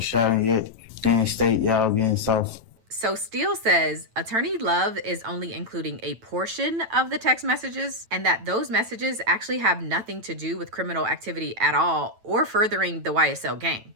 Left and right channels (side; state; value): left; late; 9.1 ms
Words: shot him yet. Then state y'all getting soft. So Steele says Attorney Love is only including a portion of the text messages and that those messages actually have nothing to do with criminal activity at all or furthering the YSL gang.